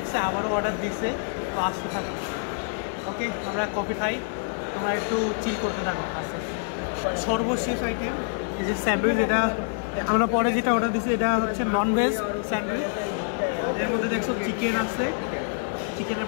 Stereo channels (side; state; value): right; silent; digital silence